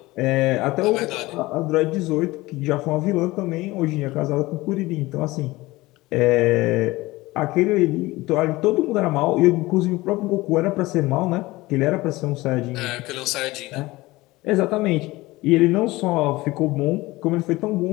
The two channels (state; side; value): quieter; right; 19.9 dB